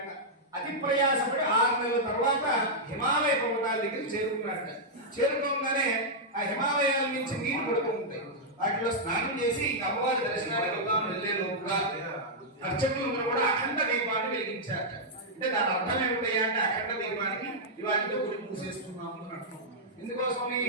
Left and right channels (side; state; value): both; normal; correlation -0.07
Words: అతి ప్రయాసపడి 6 నెలల తర్వాత హిమాలయ పర్వతాల దగ్గర చేరుకున్నాడట. చేరుకోగానే ఆ హిమాలయాల నుంచి నీళ్లు పడుతూ ఉంటాయి. వాటిలో స్నానం చేసి అమ్మవారి దర్శనానికి వెళ్దాం వెళ్ళే లోపుగా అర్చకులు కూడా అఖండ దీపాన్ని వెలిగించారట. అంటే దాని అర్థం ఏమిటయ్యా అంటే అఖండ దీపానికి ఇవాటితో గుడి మూసేస్తున్నాము అని అర్థం. ఎందుకోసం